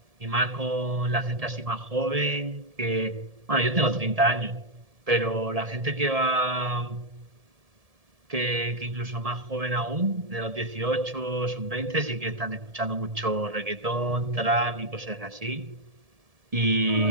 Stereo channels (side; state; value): left; late; 1.7 ms